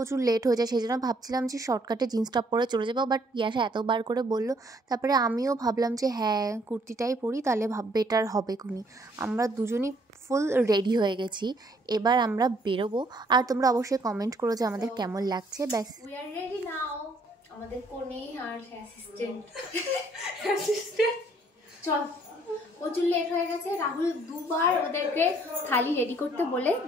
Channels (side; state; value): both; normal; correlation 0.64